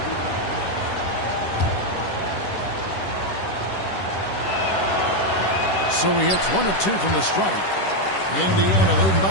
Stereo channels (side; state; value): right; late; 10 ms